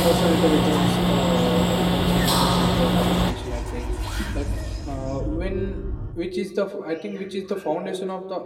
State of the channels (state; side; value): identical; both; correlation 1.00